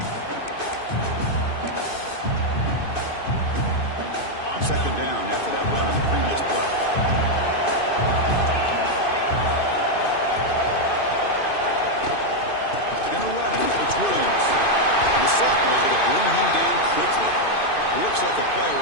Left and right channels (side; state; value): right; late; 2.5 ms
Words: Second down after that run on the previous play. It's Williams. And the sophomore is going to bring him down quickly. Looks like the player